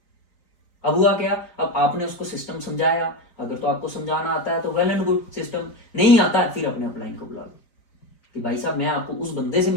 अब हुआ क्या? अब आपने उसको सिस्टम समझाया, अगर तो आपको समझाना आता है तो वेल एंड गुड, सिस्टम नहीं आता है फिर अपने अपलाइन को बुला लो कि भाई साहब मैं आपको उस बंदे से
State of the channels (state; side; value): late; right; 4.4 ms